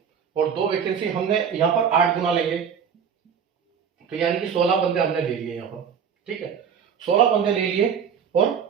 और 2 वैकेंसी हमने यहाँ पर 8 गुना लेंगे, तो यानी कि 16 बंदे हमने ले लिए यहाँ पर। ठीक है, 16 बंदे ले लिए और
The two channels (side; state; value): left; quieter; 7.3 dB